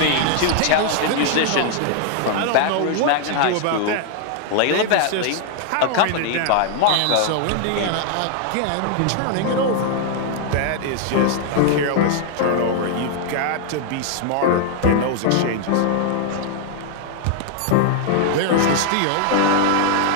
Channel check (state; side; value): different; both; correlation 0.00